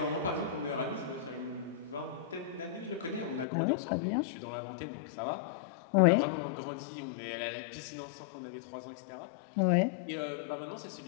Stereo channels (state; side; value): drops out; right; at 3.5 s